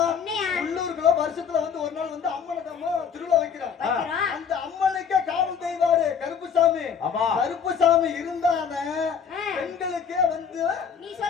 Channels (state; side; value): quieter; right; 6.9 dB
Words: என்னையா? உள்ளூருக்குள்ள வருஷத்துல வந்து ஒரு நாள் வந்து அம்மனுக்கு அம்மா திருவிழா வைக்கிறோம். வைக்கிறோம். அந்த அம்மனுக்கே காவல் தெய்வாரு கருப்புசாமி. ஆமா. கருப்புசாமி இருந்தானே பெண்களுக்கே வந்து நீ